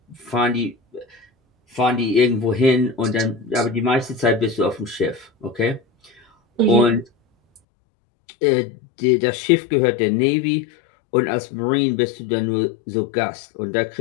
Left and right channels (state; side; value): drops out; right; at 7.6 s